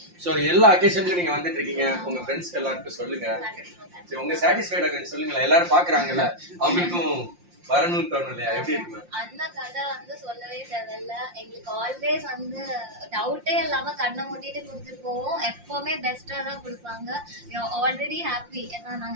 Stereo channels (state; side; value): late; left; 5.7 ms